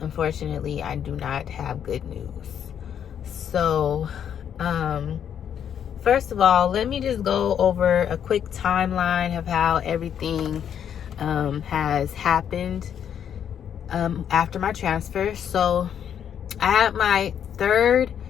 unfortunately, I do not have good news. So, first of all, let me just go over a quick timeline of how everything has happened after my transfer. So, I had my third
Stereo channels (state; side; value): quieter; right; 8.8 dB